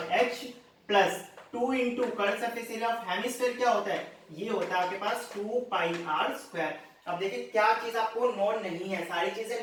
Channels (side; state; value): both; identical; correlation 1.00